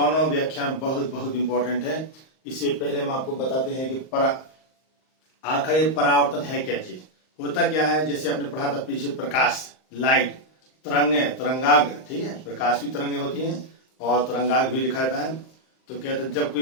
व्याख्या बहुत बहुत इंपॉर्टेंट है। इससे पहले हम आपको बताते हैं कि आखिर परावर्तन है क्या चीज, होता क्या है। जैसे आपने पढ़ा था पीछे, प्रकाश, लाइट, तरंगे, तरंगाग्र, ठीक है। प्रकाश भी तरंगे होती हैं और तरंगाग्र भी लिखा जाता है। तो कहते हैं जब कोई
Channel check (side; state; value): right; late; 38 ms